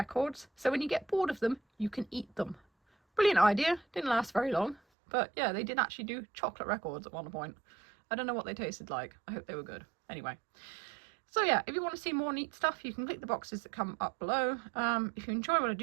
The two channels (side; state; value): left; drops out; at 4.8 s